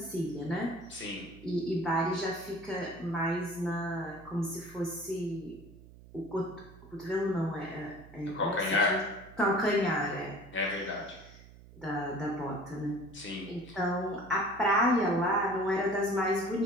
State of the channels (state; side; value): noise; right; hum, 20 dB below the sound